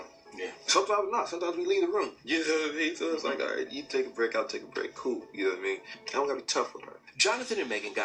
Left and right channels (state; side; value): identical; both; correlation 1.00